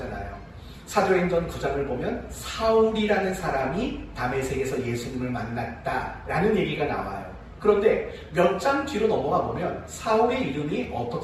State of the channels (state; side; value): identical; both; correlation 1.00